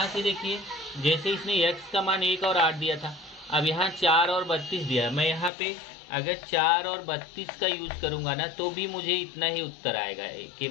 से देखिए, जैसे इसने x का मान 1 और 8 दिया था, अब यहाँ 4 और 32 दिया, मैं यहाँ पे अगर 4 और 32 का यूज करूँगा ना तो भी मुझे इतना ही उत्तर आएगा, के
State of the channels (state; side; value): drops out; right; at 5.5 s